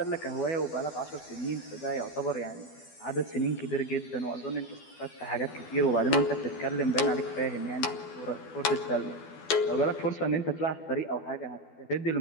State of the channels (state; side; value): late; right; 12 ms